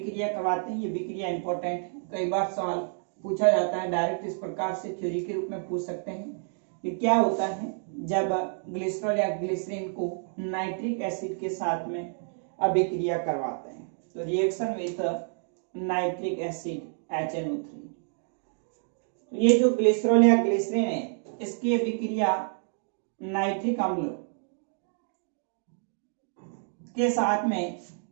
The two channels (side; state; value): left; silent; 59 dB below the other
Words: करवाते हैं। ये अभिक्रिया इंपॉर्टेंट है, कई बार सवाल पूछा जाता है, डायरेक्ट इस प्रकार से थ्योरी के रूप में पूछ सकते हैं कि क्या होता है जब ग्लिसरॉल या ग्लिसरीन को नाइट्रिक एसिड के साथ में अभिक्रिया करवाते हैं। तो reaction with nitric acid HNO3। ये जो ग्लिसरॉल या ग्लिसरीन है इसकी अभिक्रिया नाइट्रिक अम्ल के साथ में